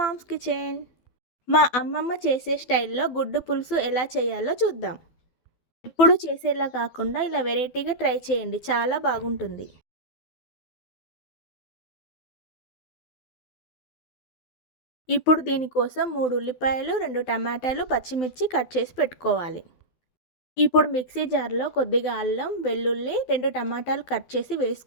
kitchen. మా అమ్మమ్మ చేసే స్టైల్లో గుడ్డు పులుసు ఎలా చేయాలో చూద్దాం. ఎప్పుడు చేసేలా కాకుండా ఇలా వెరైటీగా ట్రై చేయండి, చాలా బాగుంటుంది. ఇప్పుడు దీనికోసం 3 ఉల్లిపాయలు, 2 టమాటాలు, పచ్చిమిర్చి కట్ చేసి పెట్టుకోవాలి. ఇప్పుడు మిక్సీ జార్లో కొద్దిగా అల్లం, వెల్లుల్లి, 2 టమాటాలు కట్ చేసి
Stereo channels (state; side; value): late; right; 12 ms